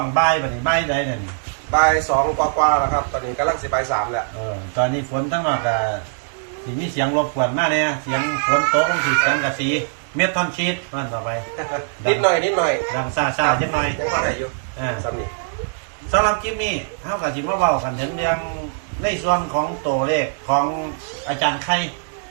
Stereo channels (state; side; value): silent; left; digital silence